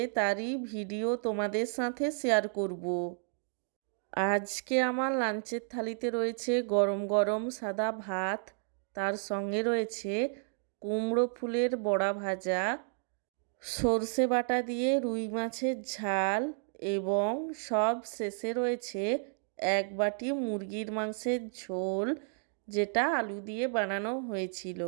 তারই ভিডিও তোমাদের সাথে শেয়ার করব। আজকে আমার লাঞ্চের থালিতে রয়েছে গরম গরম সাদা ভাত, তার সঙ্গে রয়েছে কুমড়ো ফুলের বড়া ভাজা, সর্ষে বাটা দিয়ে রুই মাছের ঝাল এবং সব শেষে রয়েছে এক বাটি মুরগির মাংসের ঝোল, যেটা আলু দিয়ে বানানো হয়েছিল।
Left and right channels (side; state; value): left; silent; 56 dB below the other